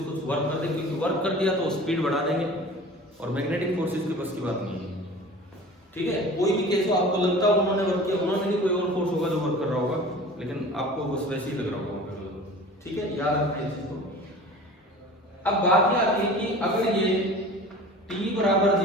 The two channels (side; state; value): both; normal; correlation 0.40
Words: कुछ वर्क कर दें, क्योंकि वर्क कर दिया तो स्पीड बढ़ा देंगे और मैग्नेटिक फोर्सेस की बस की बात नहीं है। ठीक है, कोई भी केस हो, आपको लगता है उन्होंने वर्क किया, उन्होंने नहीं, कोई और फोर्स होगा जो वर्क कर रहा होगा, लेकिन आपको बस वैसे ही लग रहा होगा। ठीक है, याद रखना इस चीज को। अब बात यह आती है कि अगर ये t बराबर